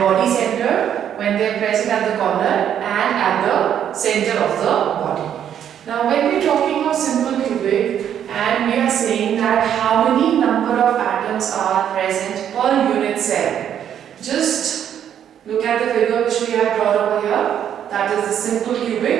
centered when they are present at the corner and at the center of the body. Now when we are talking of simple cubic and we are saying that how many number of atoms are present per unit cell, just look at the figure which we have drawn over here, that is the simple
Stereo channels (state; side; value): quieter; left; 9.5 dB